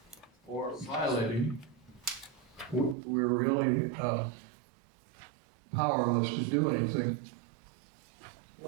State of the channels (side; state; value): left; drops out; at 3.0 s